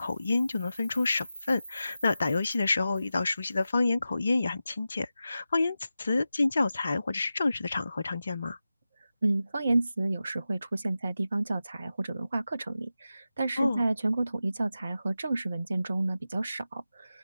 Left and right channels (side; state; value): both; inverted; correlation -0.92